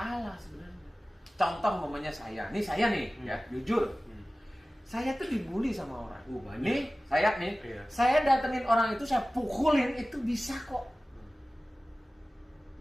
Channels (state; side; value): normal; both; correlation 0.97